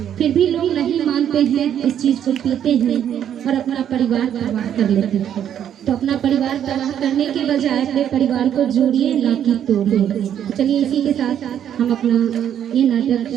फिर भी लोग नहीं मानते हैं, इस चीज़ को पीते हैं और अपना परिवार तबाह कर लेते हैं। तो अपना परिवार तबाह करने के बजाय अपने परिवार को जोड़िए, ना कि तोड़िए। चलिए इसी के साथ हम अपना ये नाटक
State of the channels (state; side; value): quieter; left; 9.7 dB